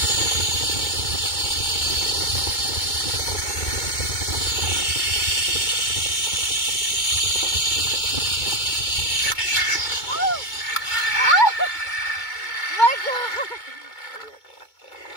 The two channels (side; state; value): right; late; 2.2 ms